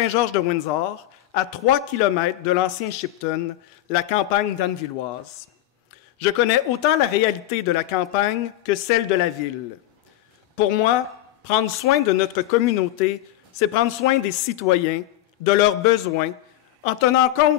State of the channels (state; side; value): quieter; right; 14.0 dB